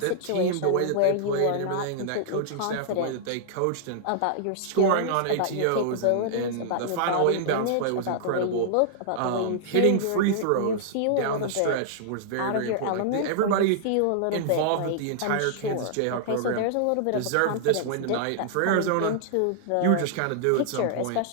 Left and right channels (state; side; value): different; both; correlation -0.01